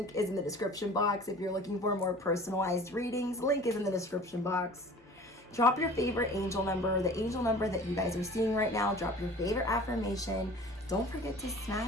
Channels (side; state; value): both; normal; correlation 0.44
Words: is in the description box. If you're looking for more personalized readings, link is in the description box. Drop your favorite angel number, the angel number that you guys are seeing right now. Drop your favorite affirmation. Don't forget to